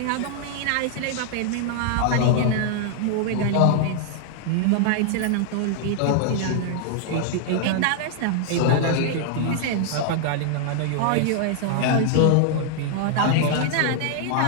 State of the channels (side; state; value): both; different; correlation 0.00